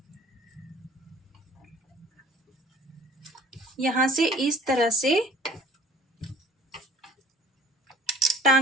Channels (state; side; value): normal; both; correlation 0.51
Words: यहाँ से इस तरह से